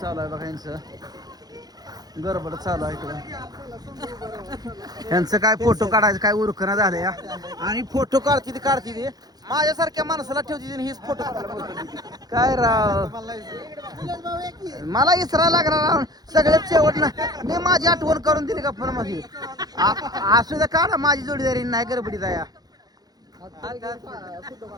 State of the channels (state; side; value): late; left; 0.19 ms